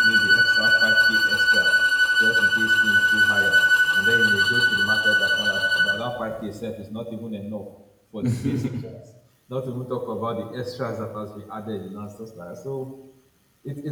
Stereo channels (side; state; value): both; identical; correlation 1.00